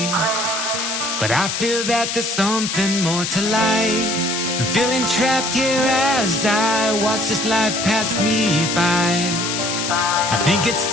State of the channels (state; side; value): noise; left; hiss, 2 dB below the sound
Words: but I feel that there's something more to life. I'm feeling trapped here as I watch this life pass me by. I think it's